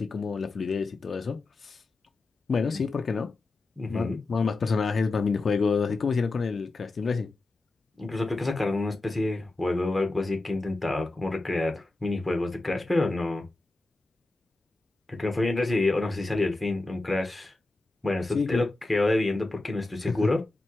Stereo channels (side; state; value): right; quieter; 3.0 dB